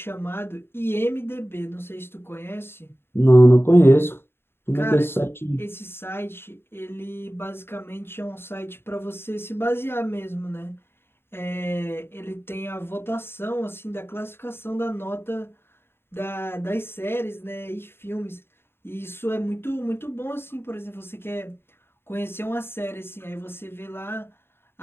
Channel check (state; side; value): late; right; 0.11 ms